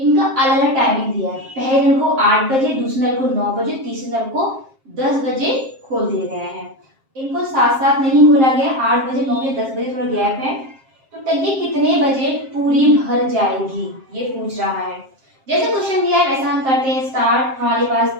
अलग अलग टाइमिंग दिया है। पहले नल को 8 बजे, दूसरे नल को 9 बजे, तीसरे नल को 10 बजे खोल दिए गए हैं। इनको साथ साथ नहीं खोला गया, 8 बजे, 9 बजे, 10 बजे थोड़ा गैप है। तो टंकी कितने बजे पूरी भर जाएगी ये पूछ रहा है। जैसे क्वेश्चन दिया है वैसा हम करते हैं स्टार्ट। हमारे पास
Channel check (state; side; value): late; left; 7.5 ms